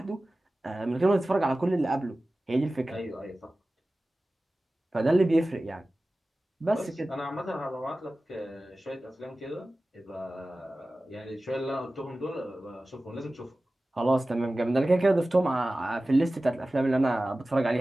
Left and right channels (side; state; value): both; normal; correlation 0.96